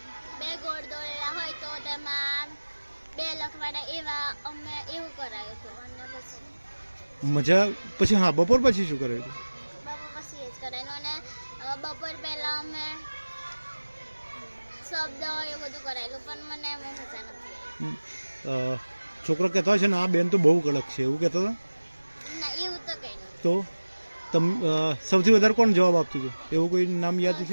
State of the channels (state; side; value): inverted; both; correlation -1.00